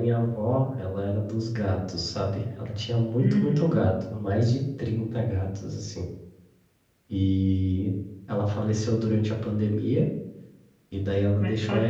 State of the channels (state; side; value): identical; both; correlation 1.00